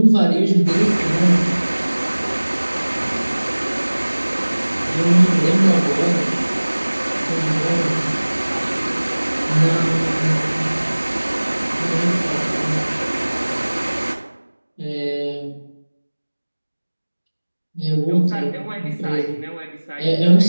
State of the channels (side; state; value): both; inverted; correlation -1.00